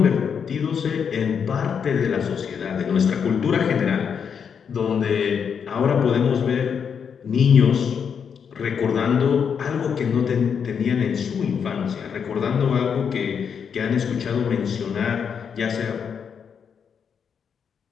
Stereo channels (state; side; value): quieter; right; 7.0 dB